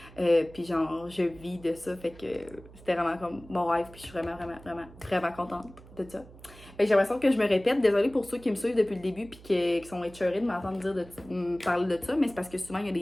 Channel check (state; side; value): noise; right; hum, 20 dB below the sound